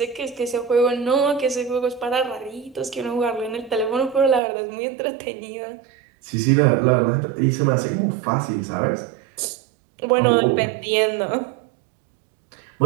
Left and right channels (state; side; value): drops out; left; at 4.4 s